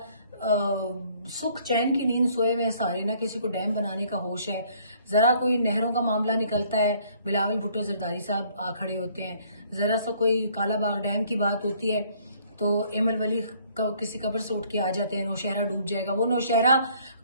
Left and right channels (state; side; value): inverted; both; correlation -0.61